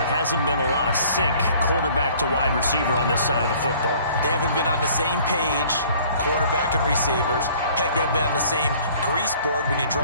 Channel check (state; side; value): inverted; both; correlation -0.54